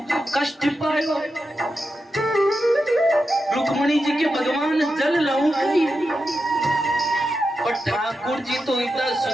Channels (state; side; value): normal; both; correlation 0.89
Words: कष्ट पायो। रुक्मणी जी के भगवान जल लाऊं गई पर ठाकुर जी तो इतना